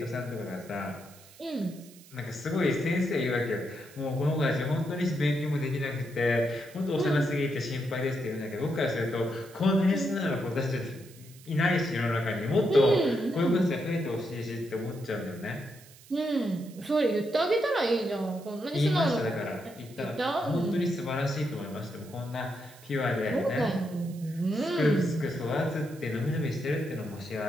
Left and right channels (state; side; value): noise; right; hiss, 22 dB below the sound